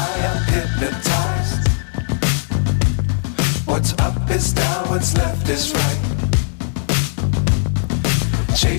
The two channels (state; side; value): silent; right; digital silence